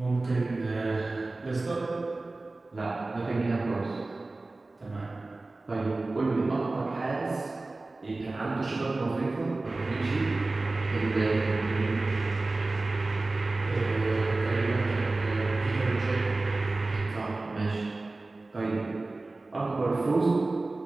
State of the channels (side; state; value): left; quieter; 3.2 dB